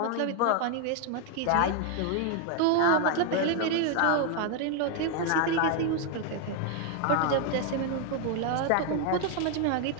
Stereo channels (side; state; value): both; different; correlation 0.00